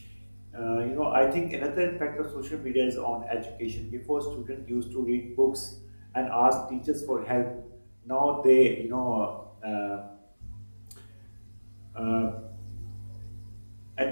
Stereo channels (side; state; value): both; inverted; correlation -1.00